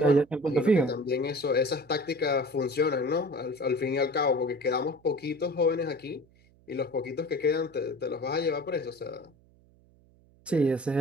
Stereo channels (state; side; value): noise; right; hum, 29 dB below the sound